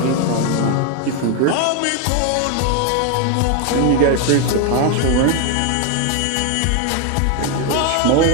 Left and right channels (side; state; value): both; different; correlation 0.01